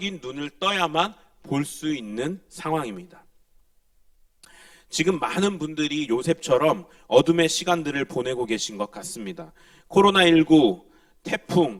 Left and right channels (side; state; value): both; identical; correlation 1.00